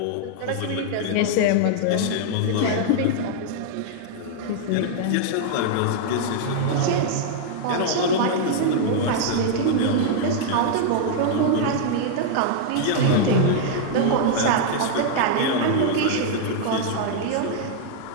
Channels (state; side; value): different; both; correlation -0.01